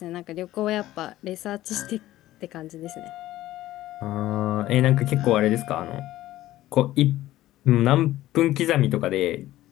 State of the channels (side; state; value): right; quieter; 15.1 dB